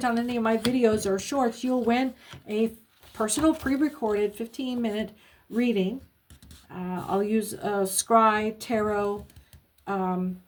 on any of my videos or shorts, you'll win a personal pre-recorded 15-minute reading. I'll use scry, tarot,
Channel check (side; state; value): both; identical; correlation 1.00